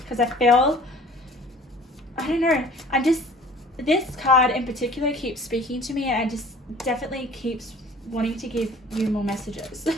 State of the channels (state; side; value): normal; both; correlation 0.48